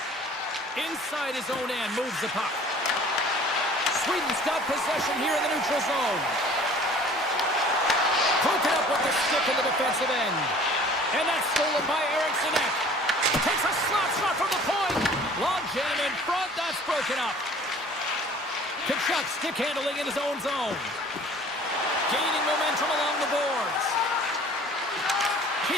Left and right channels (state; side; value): normal; both; correlation 0.49